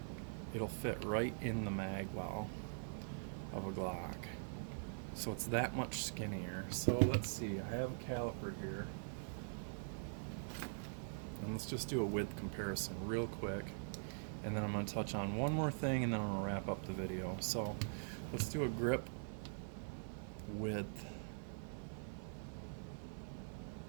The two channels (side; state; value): left; silent; digital silence